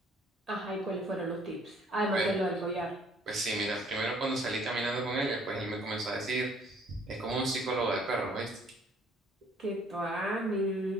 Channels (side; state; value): both; normal; correlation 0.60